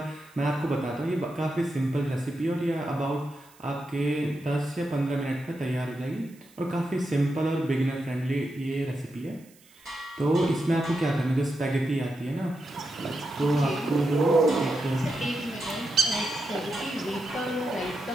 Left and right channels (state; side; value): noise; right; hiss, 27 dB below the sound